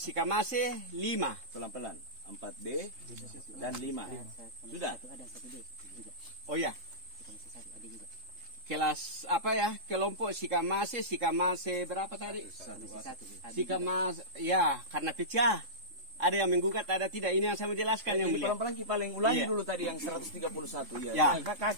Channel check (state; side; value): late; left; 3.7 ms